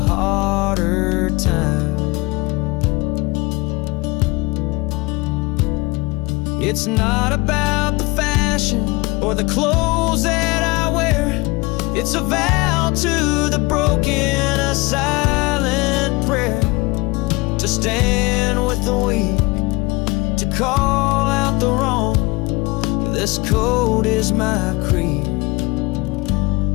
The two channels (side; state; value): right; quieter; 24.4 dB